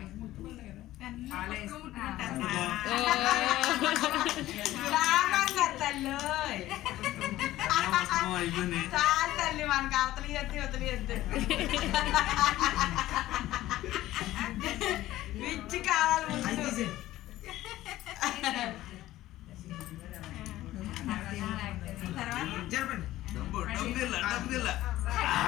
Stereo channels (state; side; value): quieter; right; 15.4 dB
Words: తల్లి తల్లి మనకి అవతలి ఎత్తి వదిలి ఎద్దు విచ్చి కావాలి ముందు.